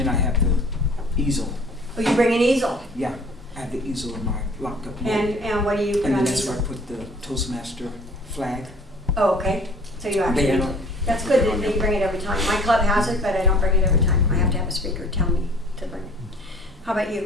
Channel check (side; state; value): both; normal; correlation 0.50